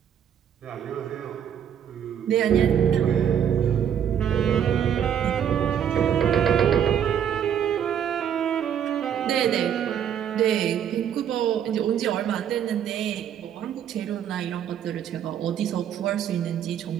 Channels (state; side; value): quieter; left; 9.0 dB